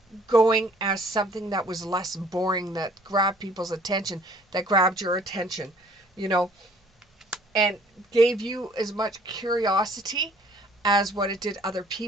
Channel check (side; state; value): both; normal; correlation 0.57